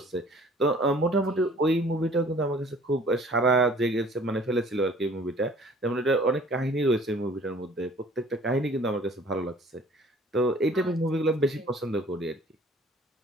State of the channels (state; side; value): normal; both; correlation 0.52